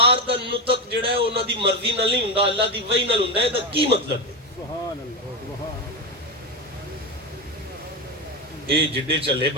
دا نطق جڑا ہے انہاں دی مرضی نال نہیں ہوندا اللہ دی وحی نال ہوندا ہے دا کی مطلب ہے اے جڑے چلے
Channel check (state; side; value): normal; both; correlation 0.14